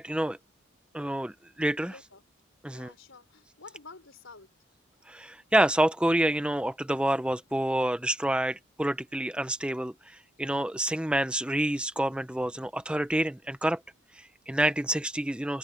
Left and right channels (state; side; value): normal; both; correlation 0.85